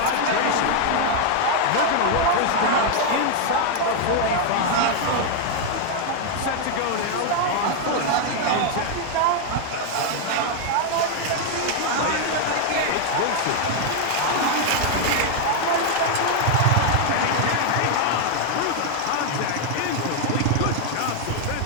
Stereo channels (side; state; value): both; different; correlation 0.00